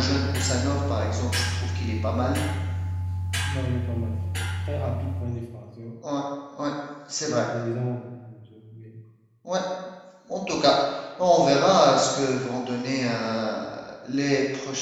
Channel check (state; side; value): identical; both; correlation 1.00